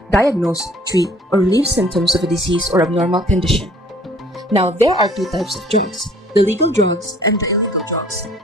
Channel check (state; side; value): normal; both; correlation 0.55